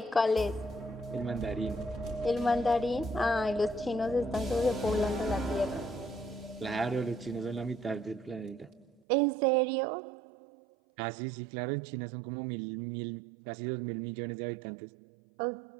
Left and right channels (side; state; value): left; drops out; at 9.0 s